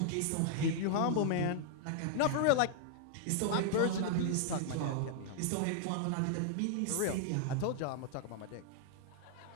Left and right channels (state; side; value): different; both; correlation -0.01